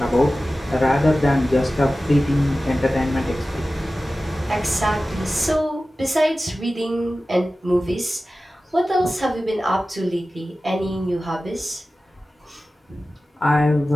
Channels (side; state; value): both; normal; correlation 0.95